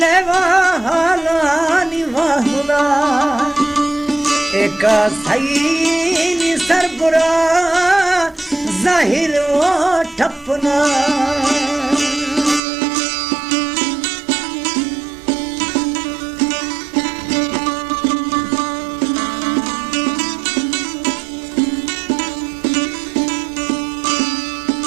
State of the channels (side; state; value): left; drops out; at 12.6 s